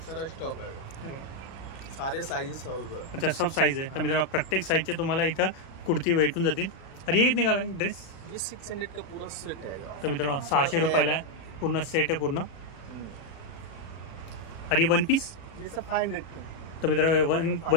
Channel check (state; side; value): late; right; 37 ms